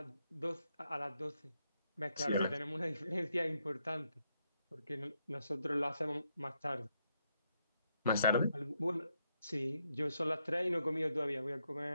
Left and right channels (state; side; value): inverted; both; correlation -0.78